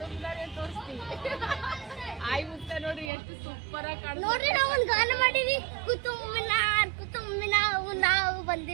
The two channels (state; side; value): drops out; left; at 3.1 s